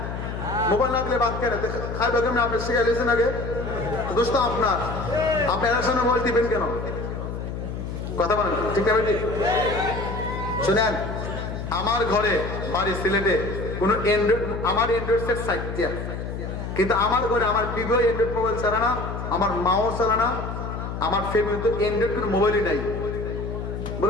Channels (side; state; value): left; noise; hum, 6 dB below the sound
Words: মোবাইল না দিলে ভাত খায় না। খাইবে কেমন আপনি শিখে গেছেন আগে? দোষ তো আপনার, আপনি এর সামনে মোবাইল দিবেন কেন? কথা বলেন ঠিক না ভাই ঠিক? শুনেন, আমার ঘরে বাড়ি সিলেটে কোন অ্যান্ড্রয়েড, আমার অ্যান্ড্রয়েড সেট 60টা, কিন্তু আমার ঘরে আমার বিবাহ অ্যান্ড্রয়েড মোবাইল চালা না, আমার মাও চালা না, আমার ফ্যামিলিতে অ্যান্ড্রয়েড কোনো মোবাইলই নাই।